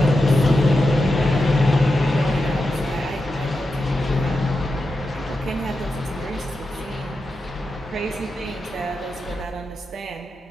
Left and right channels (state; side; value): normal; both; correlation 0.89